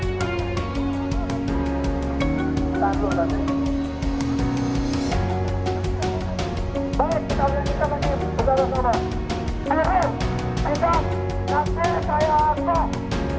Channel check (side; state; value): both; identical; correlation 1.00